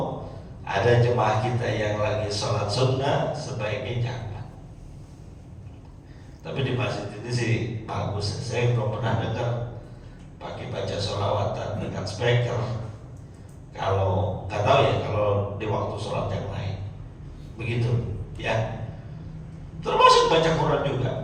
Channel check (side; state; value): both; identical; correlation 1.00